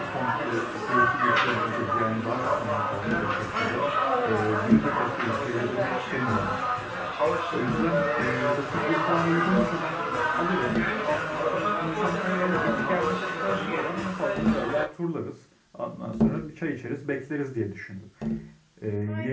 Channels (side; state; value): both; identical; correlation 1.00